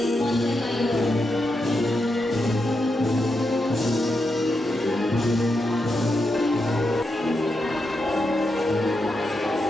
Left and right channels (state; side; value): normal; both; correlation 0.85